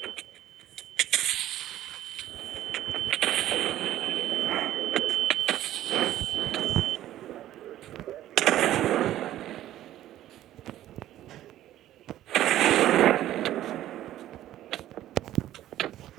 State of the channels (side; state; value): left; quieter; 13.3 dB